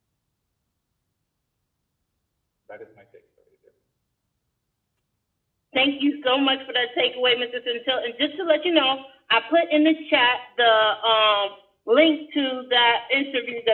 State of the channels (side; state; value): both; identical; correlation 1.00